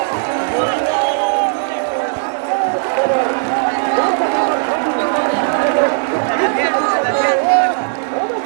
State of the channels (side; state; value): left; silent; digital silence